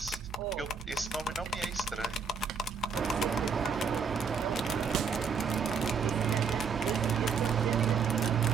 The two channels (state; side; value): quieter; left; 5.6 dB